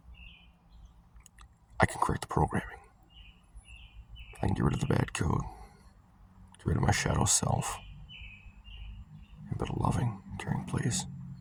I can correct the programming. I can get rid of the bad code, get rid of my shadow self, and build a loving, caring place.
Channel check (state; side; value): identical; both; correlation 1.00